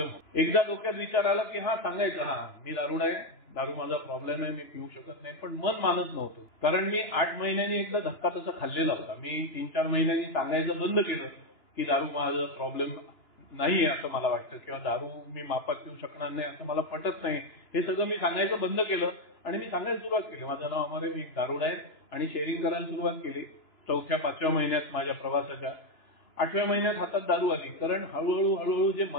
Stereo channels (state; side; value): late; right; 2.9 ms